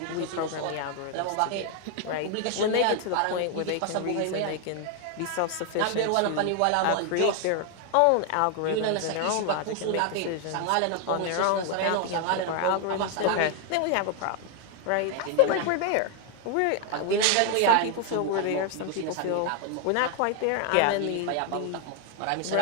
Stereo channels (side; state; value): both; different; correlation 0.00